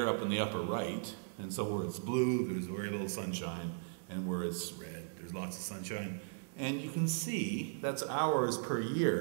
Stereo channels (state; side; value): silent; left; digital silence